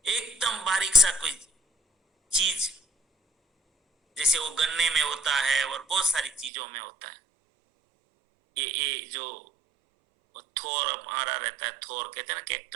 एकदम बारीक सा कोई चीज, जैसे वो गन्ने में होता है और बहुत सारी चीजों में होता है। ये जो थोर हमारा रहता है, थोर कहते हैं ना,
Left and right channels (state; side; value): drops out; left; at 6.5 s